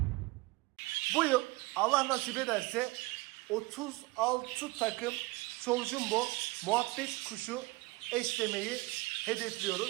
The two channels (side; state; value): left; quieter; 22.6 dB